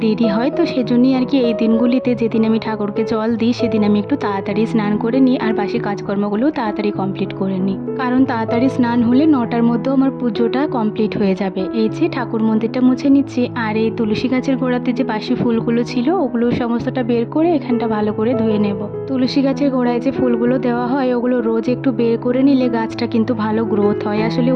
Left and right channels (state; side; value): identical; both; correlation 1.00